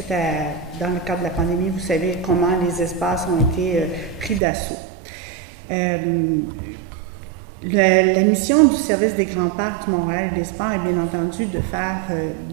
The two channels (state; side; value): drops out; left; at 4.4 s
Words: à, dans le cadre de la pandémie, vous savez comment les espaces ont été pris d'assaut. La mission du service des grands parcs du Montréal et des Sports est bien entendu de faire